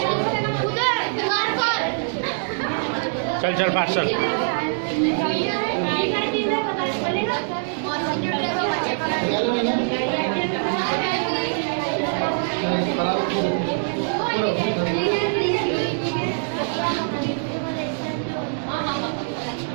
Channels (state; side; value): silent; left; digital silence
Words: चल चल फास्ट चल।